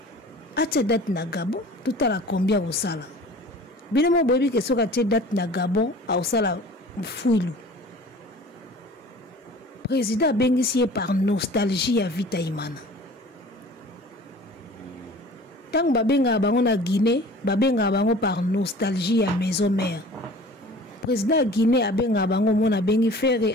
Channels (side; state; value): both; normal; correlation 0.44